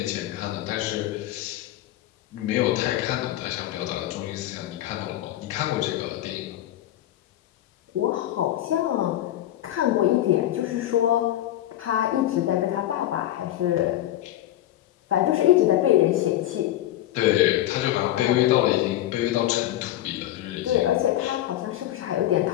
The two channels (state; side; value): quieter; right; 13.6 dB